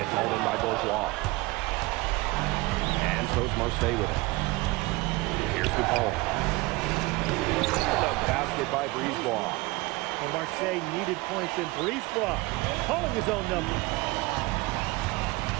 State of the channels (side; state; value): left; quieter; 22.5 dB